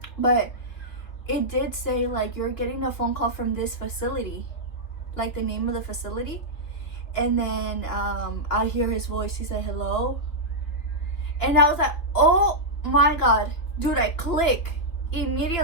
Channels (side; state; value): right; late; 3.1 ms